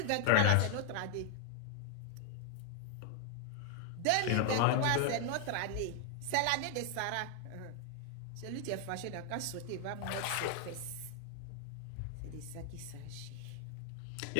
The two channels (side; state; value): both; different; correlation 0.00